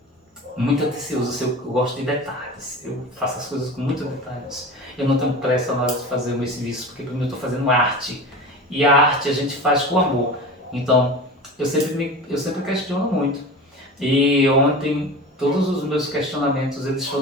atencioso, eu gosto de detalhes, eu faço as coisas com muitos detalhes. Eu não tenho pressa na hora de fazer o meu serviço, porque primeiro eu estou fazendo arte, e a arte a gente faz com amor. Então, eu sempre questiono muito. E ontem, todos os meus questionamentos, eles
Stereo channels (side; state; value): both; normal; correlation 0.33